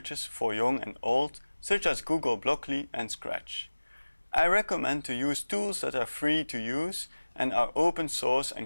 for young and old, such as Google Blockly and Scratch. I recommend to use tools that are free to use and are open source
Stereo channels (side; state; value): both; inverted; correlation -1.00